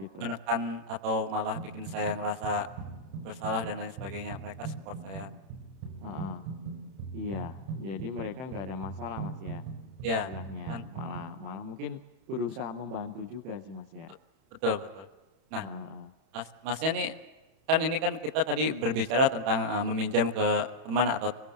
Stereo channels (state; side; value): late; left; 31 ms